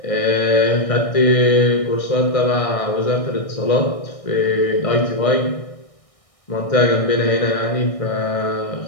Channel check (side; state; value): right; late; 1.6 ms